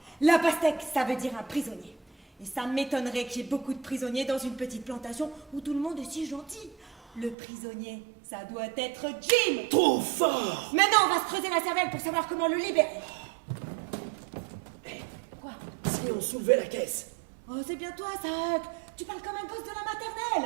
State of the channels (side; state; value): left; drops out; at 7.4 s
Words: La pastèque, ça veut dire un prisonnier. Et ça m'étonnerait qu'il y ait beaucoup de prisonniers dans une petite plantation où tout le monde est si gentil. Le prisonnier, ça doit être Jim. Trop fort! Maintenant, on va se creuser la cervelle pour savoir comment le libérer. Quoi? Si on soulevait la caisse. Oh, c'est bien toi, ça, Huck. Tu parles comme un gosse de la